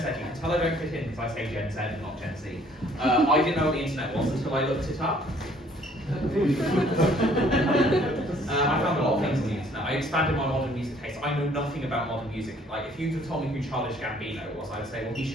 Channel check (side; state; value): both; normal; correlation 0.60